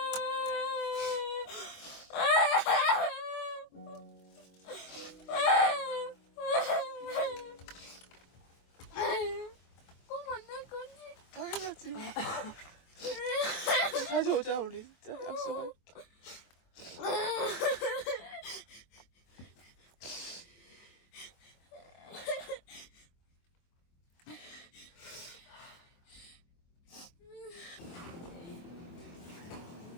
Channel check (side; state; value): right; late; 24 ms